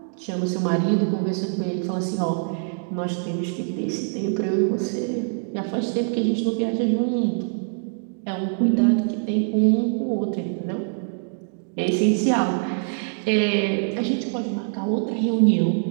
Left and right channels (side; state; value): left; silent; digital silence